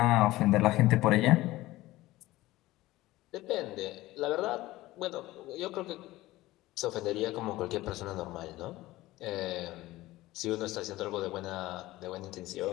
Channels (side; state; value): right; quieter; 17.7 dB